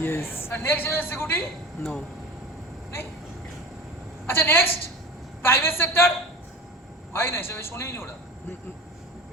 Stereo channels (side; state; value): both; normal; correlation 0.34